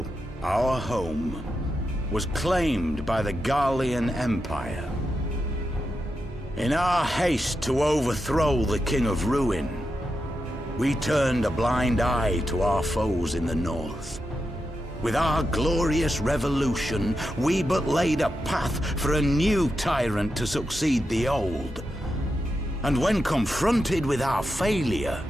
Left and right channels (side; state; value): both; normal; correlation 0.87